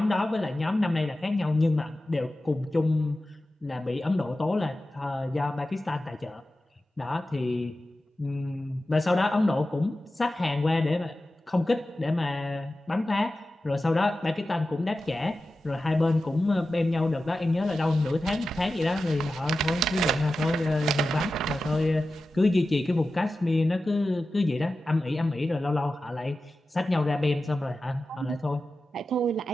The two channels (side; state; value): both; normal; correlation 0.94